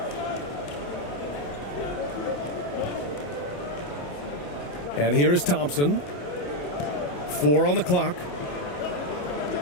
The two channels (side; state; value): right; late; 28 ms